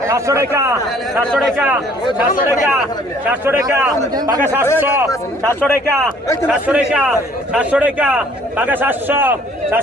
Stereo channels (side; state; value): both; normal; correlation 0.58